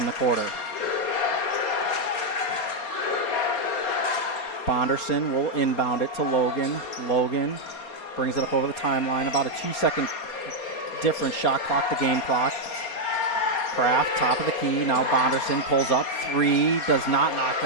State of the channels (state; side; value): late; right; 4.3 ms